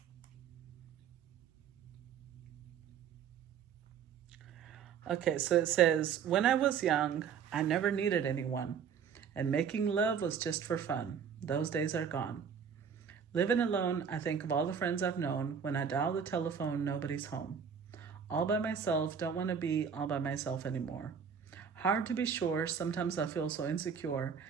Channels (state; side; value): quieter; left; 7.2 dB